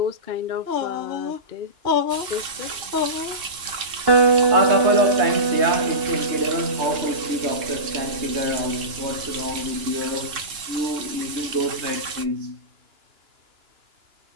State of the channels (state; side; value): late; left; 2.9 ms